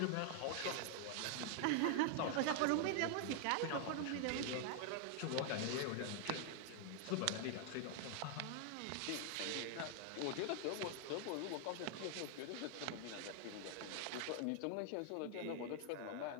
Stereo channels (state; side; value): different; both; correlation 0.00